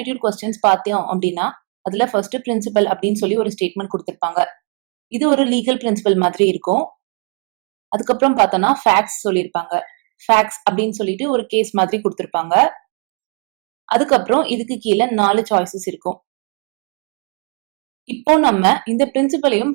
கொஸ்டின்ஸ் பார்த்தோம் அப்படின்னா அதுல ஃபர்ஸ்ட் பிரின்சிபல் அப்படின்னு சொல்லி ஒரு ஸ்டேட்மெண்ட் கொடுத்திருப்பாங்க. இது ஒரு லீகல் பிரின்சிபல் மாதிரி இருக்கும். அதுக்கப்புறம் பார்த்தோம்னா ஃபேக்ட்ஸ் சொல்லியிருப்பாங்க. ஃபேக்ட்ஸ் அப்படின்னு சொல்லிட்டு ஒரு கேஸ் மாதிரி கொடுத்திருப்பாங்க. அதுக்கப்புறம் இதுக்கு கீழே 4 சாய்ஸஸ் இருக்கும். இப்போ நம்ம இந்த பிரின்சிபலையும்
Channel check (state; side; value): quieter; left; 36.1 dB